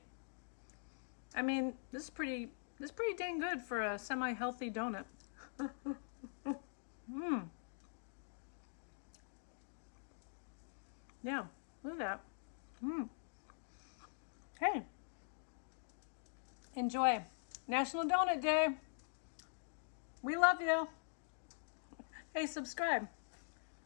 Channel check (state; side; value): silent; right; digital silence